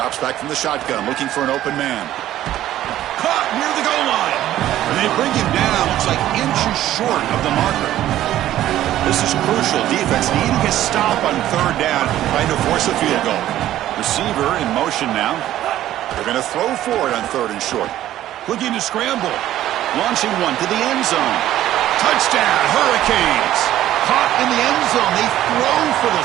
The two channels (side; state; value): left; quieter; 13.2 dB